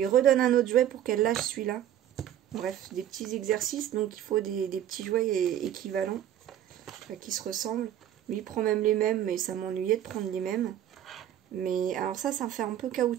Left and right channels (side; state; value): left; quieter; 11.1 dB